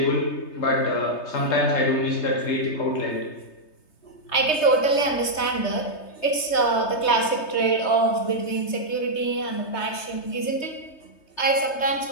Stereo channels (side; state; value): right; late; 3.3 ms